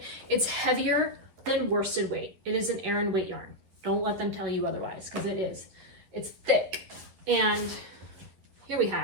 It's heavier than worsted weight. It is an Aran weight yarn. Don't let them tell you otherwise, because it is. It's thick. And here we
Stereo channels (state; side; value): late; left; 11 ms